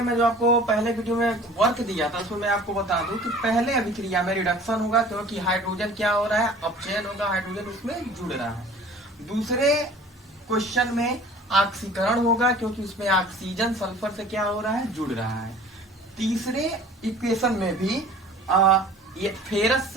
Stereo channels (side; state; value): both; normal; correlation 0.46